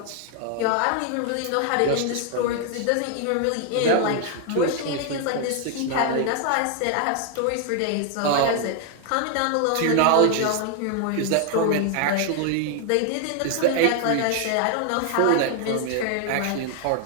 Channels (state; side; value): different; both; correlation 0.00